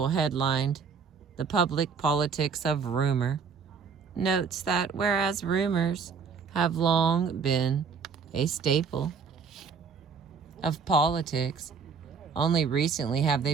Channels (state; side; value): quieter; left; 5.7 dB